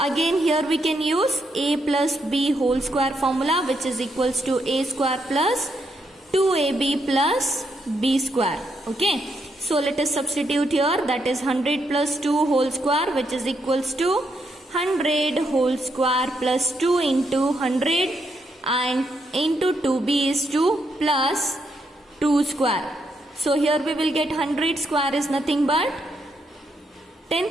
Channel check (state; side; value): normal; both; correlation 0.78